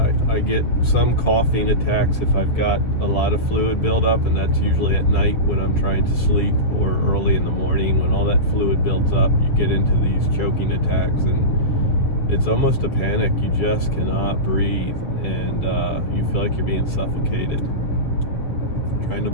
I get some coughing attacks if I've got a lot of fluid buildup, and that's usually at night when I'm trying to sleep, or early in the morning when all that fluid builds up. You get into these choking attacks, and it's almost a panic. You just cannot breathe, and you feel like you're being suffocated, trying to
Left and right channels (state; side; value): late; right; 7.4 ms